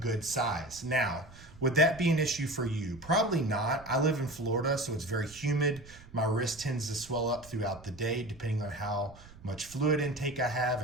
size. Now, would that be an issue for you? Probably not. I live in Florida, so it's very humid. My wrist tends to swell up throughout the day, depending on how much fluid intake I have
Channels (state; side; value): noise; right; rumble, 20 dB below the sound